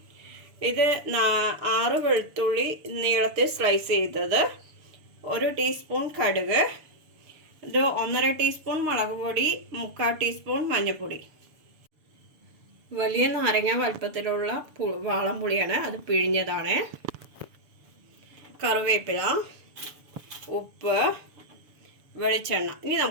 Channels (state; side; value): late; left; 6.9 ms